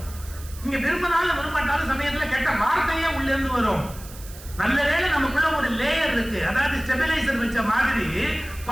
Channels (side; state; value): right; noise; hiss, 18 dB below the sound